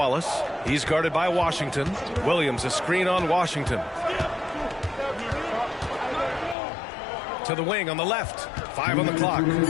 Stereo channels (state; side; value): drops out; right; at 6.6 s